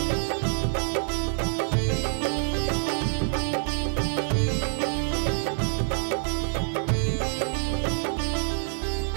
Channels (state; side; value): silent; left; digital silence